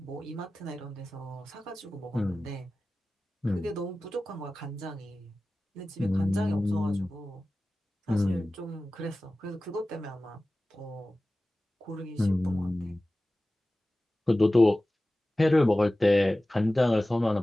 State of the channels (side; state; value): both; normal; correlation 0.96